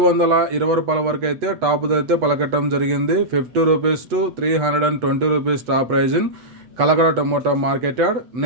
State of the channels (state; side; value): late; left; 8.0 ms